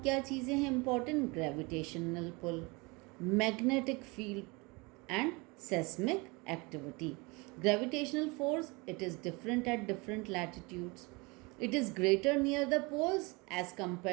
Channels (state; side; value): quieter; left; 26.9 dB